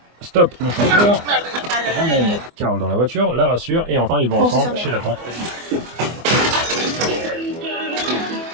stoppe le chauffeur, ramène Carole dans la voiture, la rassure, et enfin ils vont ensemble chez la tante.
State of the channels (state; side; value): late; left; 24 ms